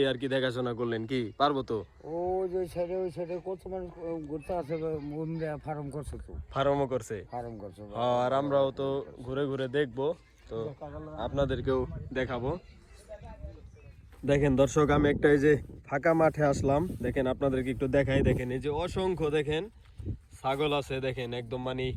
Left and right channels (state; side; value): identical; both; correlation 1.00